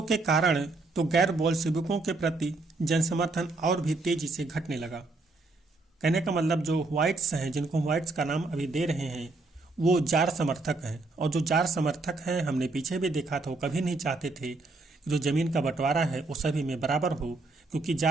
के कारण तो गैर बोल्शेविकों के प्रति जनसमर्थन और भी तेजी से घटने लगा। कहने का मतलब जो व्हाइट्स हैं, जिनको व्हाइट्स का नाम अभी दे रहे हैं, वो जार समर्थक हैं। और जो जार समर्थक हैं, हमने पीछे भी देखा था, वो कभी नहीं चाहते थे कि जो जमीन का बंटवारा है वो सभी में बराबर हो, क्योंकि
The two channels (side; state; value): left; quieter; 3.3 dB